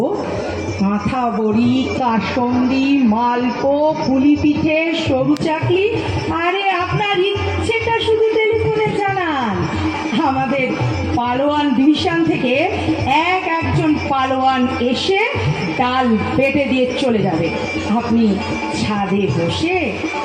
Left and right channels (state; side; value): identical; both; correlation 1.00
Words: কাঁথা বড়ি, কাসন্দি, মালপো, পুলি পিঠে, সরু চাকলি। আরে আপনার ইচ্ছেটা শুধু টেলিফোনে জানান। আমাদের পালোয়ান ডিভিশন থেকে একজন পালোয়ান এসে ডাল বেটে দিয়ে চলে যাবে। আপনি ছাদে বসে